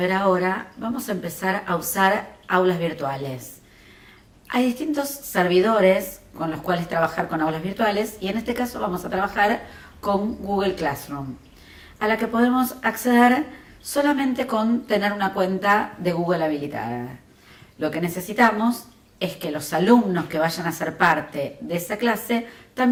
ahora, vamos a empezar a usar aulas virtuales. Hay distintos servidores con los cuales trabajar con aulas virtuales y en este caso vamos a trabajar con Google Classroom, a la que podemos acceder solamente con tener una cuenta de Google habilitada. Lo que necesitamos es que los alumnos que vayan a ser parte de esa clase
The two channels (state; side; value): identical; both; correlation 1.00